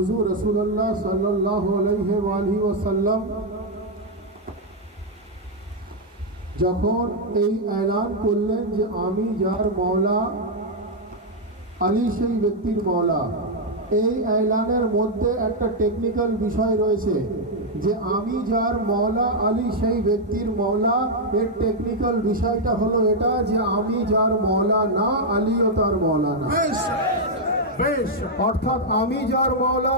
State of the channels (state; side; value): normal; both; correlation -0.01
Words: রাসূলুল্লাহ সাল্লাল্লাহু আলাইহি ওয়াসাল্লাম যখন এই এলান করলেন যে আমি যার মাওলা আলী সেই ব্যক্তির মাওলা, এই এলানের মধ্যে একটা টেকনিক্যাল বিষয় রয়েছে যে আমি যার মাওলা আলী সেই ব্যক্তির মাওলা। এর টেকনিক্যাল বিষয়টা হলো এটা যে আমি যার মাওলা না, আলীও তার মাওলা না। বেশ, অর্থাৎ আমি যার মাওলা